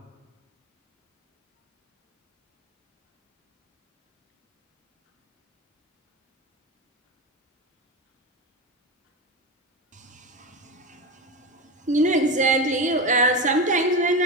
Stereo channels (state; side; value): normal; both; correlation 0.20